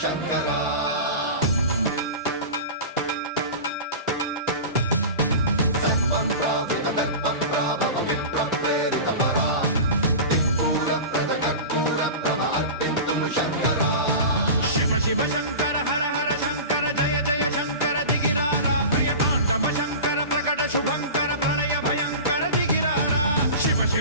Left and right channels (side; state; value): both; inverted; correlation -0.31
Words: సర్వప్రావృత దర్ప ప్రాభవ విప్ర ప్రేరిత పరా దిక్పూర ప్రద కర్పూర ప్రభ అర్పింతుము శంకరా శివ శివ శంకర హర హర శంకర జయ జయ శంకర దిగిరారా ప్రియతాండవ శంకర ప్రకట శుభంకర ప్రణయ భయంకర దిగిరారా శివ